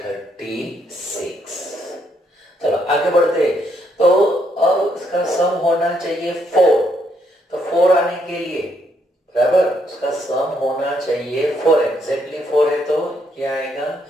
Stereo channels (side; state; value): both; normal; correlation 0.74